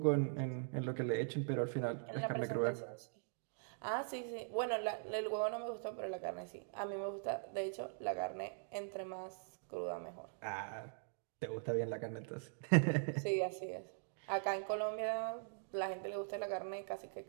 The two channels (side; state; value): left; silent; digital silence